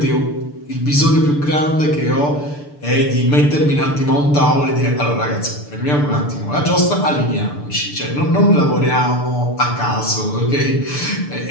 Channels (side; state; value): right; late; 6.8 ms